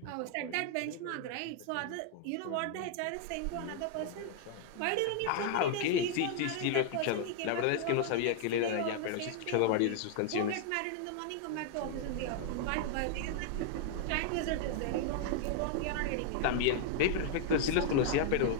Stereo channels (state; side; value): different; both; correlation 0.00